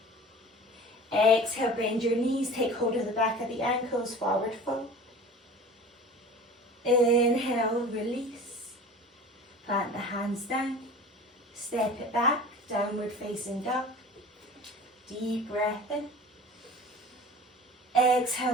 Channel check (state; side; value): normal; both; correlation 0.39